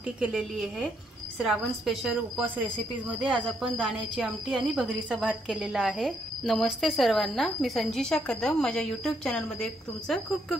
केलेली आहे। श्रावण स्पेशल उपवास रेसिपीज मध्ये आज आपण दाण्याची आमटी आणि भगरीचा भात केलेला आहे। नमस्ते सर्वांना, मी संजीशा कदम माझ्या यूट्यूब चॅनल मध्ये तुमचं खूप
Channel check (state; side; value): normal; both; correlation 0.74